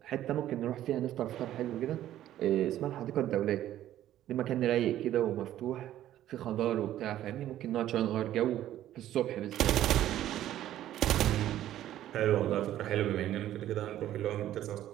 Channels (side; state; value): left; quieter; 12.7 dB